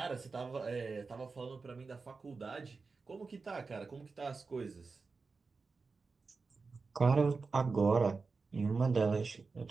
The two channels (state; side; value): quieter; left; 4.4 dB